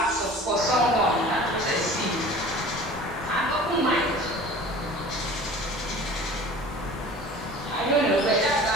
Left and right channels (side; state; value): both; normal; correlation 0.42